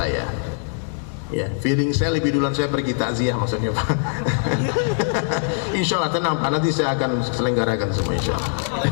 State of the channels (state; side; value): silent; right; digital silence